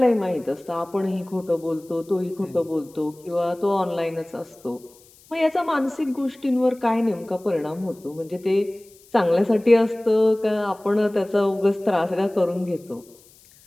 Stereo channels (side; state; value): left; noise; hiss, 27 dB below the sound